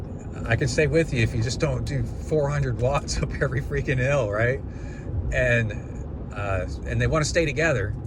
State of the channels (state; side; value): identical; both; correlation 1.00